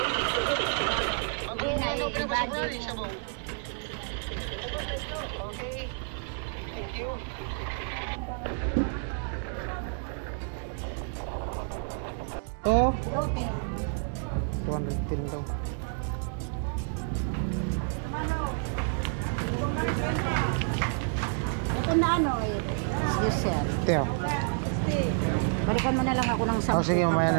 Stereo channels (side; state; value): left; silent; 58 dB below the other